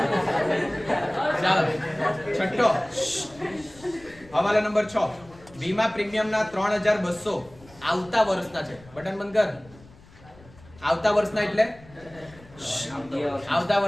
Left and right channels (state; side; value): noise; left; rumble, 23 dB below the sound